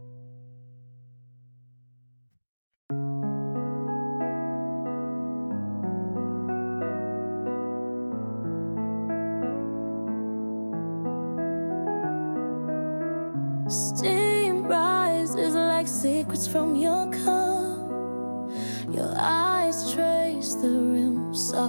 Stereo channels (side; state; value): both; inverted; correlation -1.00